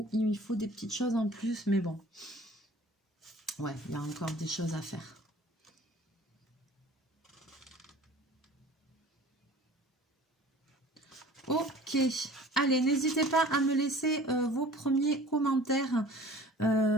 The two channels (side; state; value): both; normal; correlation 0.46